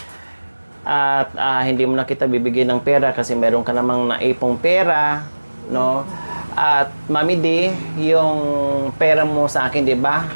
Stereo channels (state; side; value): inverted; both; correlation -1.00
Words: at hindi mo na kita bibigyan ng pera kasi meron ka namang naipong pera, no? At Mami D, yung pera mo sa akin, di ba?